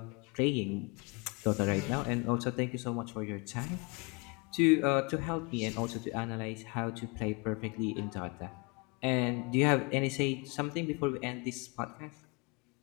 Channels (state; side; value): quieter; right; 29.6 dB